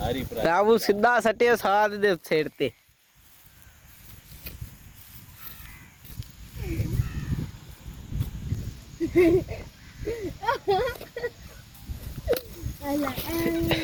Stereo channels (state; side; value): identical; both; correlation 1.00